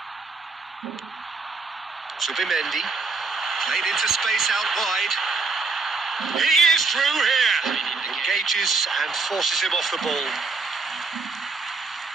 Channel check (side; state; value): left; quieter; 4.2 dB